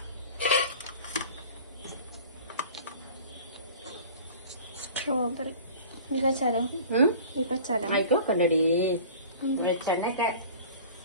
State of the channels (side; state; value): both; inverted; correlation -0.42